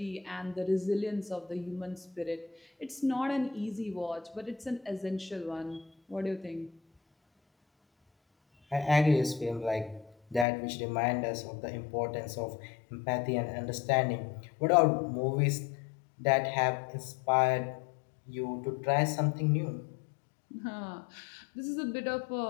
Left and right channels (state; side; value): drops out; right; at 10.5 s